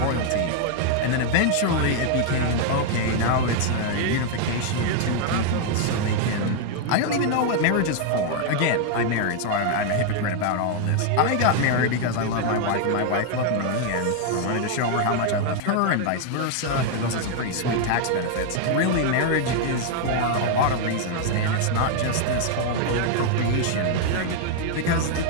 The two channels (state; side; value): different; both; correlation 0.00